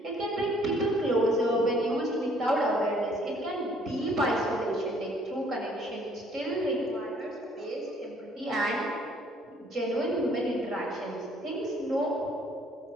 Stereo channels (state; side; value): normal; both; correlation 0.60